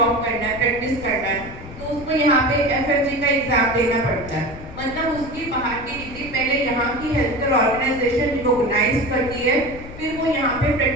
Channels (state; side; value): noise; left; rumble, 14 dB below the sound